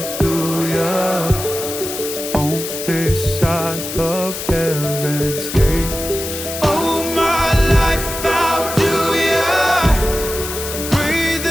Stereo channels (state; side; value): noise; left; hiss, 7 dB below the sound